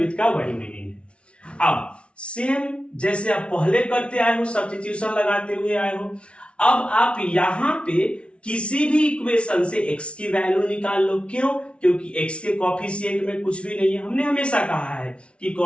का वही मीनिंग है। अब सेम जैसे आप पहले करते आए हो, सब्स्टिट्यूशन लगाते हुए आए हो, अब आप यहां पे किसी भी इक्वेशन से x की वैल्यू निकाल लो। क्यों? क्योंकि x के कोफिशिएंट में कुछ भी नहीं है। हमने हमेशा कहा है कि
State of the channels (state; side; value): late; right; 0.060 ms